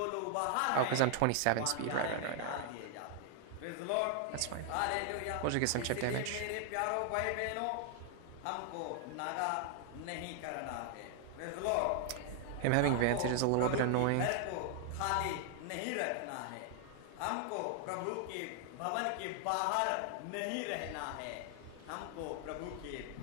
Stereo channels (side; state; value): both; different; correlation 0.00